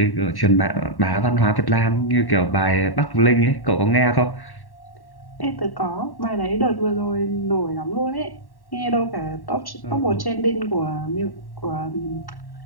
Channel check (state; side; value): late; right; 1.1 ms